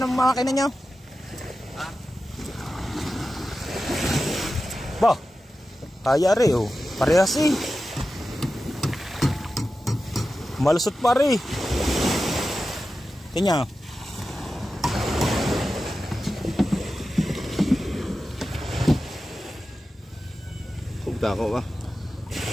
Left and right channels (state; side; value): normal; both; correlation 0.93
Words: makina nyo? Ba, kaya rin oh. Parehas eh. Malusot pa rin. Tingnan. Kugta ko ba?